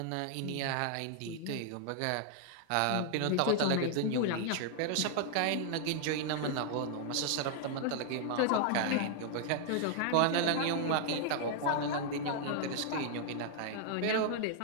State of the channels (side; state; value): both; different; correlation 0.00